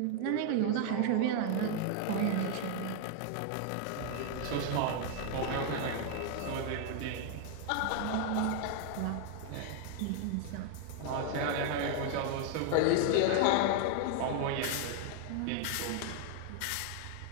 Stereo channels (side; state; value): both; different; correlation 0.00